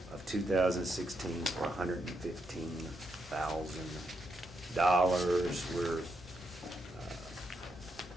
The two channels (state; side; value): normal; both; correlation 0.81